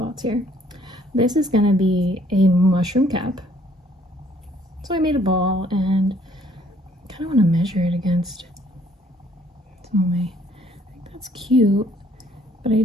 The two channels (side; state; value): both; normal; correlation 0.62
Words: here. This is going to be a mushroom cap. So I made a ball and kind of want to measure it against some of my, I think that's cute, but I